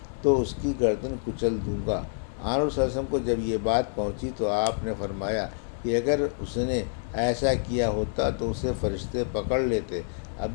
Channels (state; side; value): silent; right; 60 dB below the other